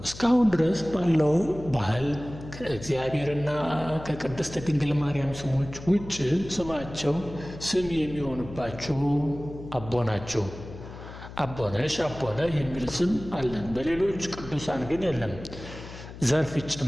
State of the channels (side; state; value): left; noise; hum, 14 dB below the sound